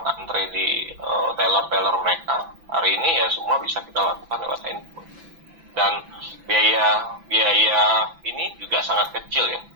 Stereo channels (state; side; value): late; left; 6.0 ms